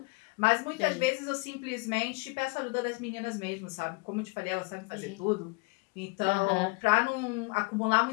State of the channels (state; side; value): quieter; right; 29.0 dB